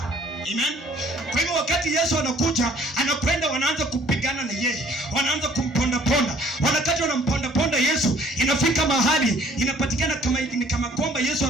Amen. Kwa hivyo wakati Yesu anakuja, anakwenda, wanaanza kupigana na yeye, wanaanza kumponda. Wakati wanamponda Yesu, inafika mahali inapatikana kama kwamba Yesu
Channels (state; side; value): normal; both; correlation 0.58